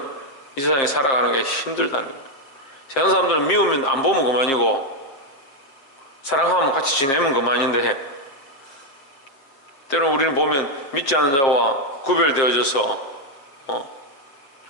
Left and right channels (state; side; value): late; right; 7.4 ms